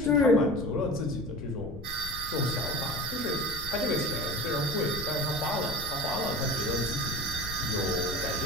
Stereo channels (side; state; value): left; noise; rumble, 11 dB below the sound